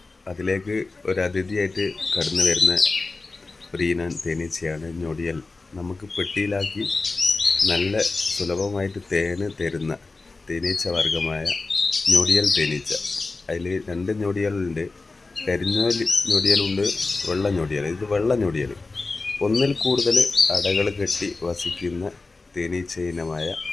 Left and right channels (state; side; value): quieter; right; 3.6 dB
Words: അതിലേക്ക് ഒരു അതിഥിയായിട്ട് കടന്നു വരുന്ന ഒരു ഇനം തേനീച്ചയാണ് ഞൊടിയൽ. നമുക്ക് പെട്ടിയിലാക്കി നല്ല സുലഭമായിട്ട് തേന് തരുന്ന തേനീച്ച വർഗമായ ഞൊടിയൽ തേനീച്ച. അതിൽ രണ്ട് ഞൊടിയലുണ്ട്, കരിഞ്ഞ ഞൊടിയലുണ്ട്, വെള്ള ഞൊടിയൽ. ഇത് വെള്ള ഞൊടിയൽ. ഒന്നിൽ കൂടുതൽ അടകൾ കെട്ടി വസിക്കുന്ന തേനീച്ച ഇനമായ